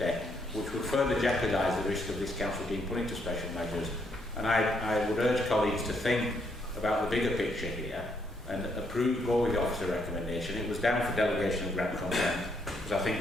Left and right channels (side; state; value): both; normal; correlation 0.74